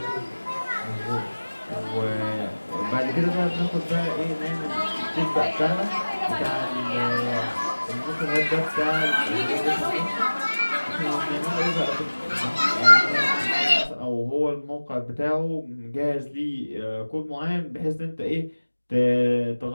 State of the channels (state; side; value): inverted; both; correlation -1.00